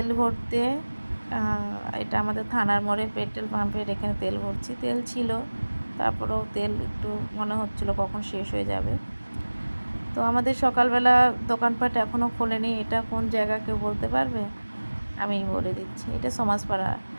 ভরতে। এটা আমাদের থানার মোড়ে পেট্রোল পাম্পের এখানে তেল ভরছি। তেল ছিল, তারপরেও তেল একটু মনে হচ্ছিল কখন শেষ হয়ে যাবে। তো আমাদের সকালবেলা দোকানপাট এখনও খোলেনি। এটা কোন জায়গা কেউ বলতে পারবে? আমি বলে দিচ্ছি, এটা সমাজপাড়া।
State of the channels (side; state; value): both; inverted; correlation -1.00